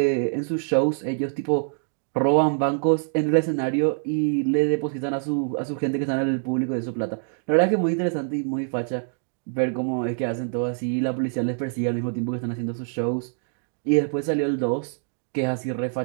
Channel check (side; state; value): left; silent; digital silence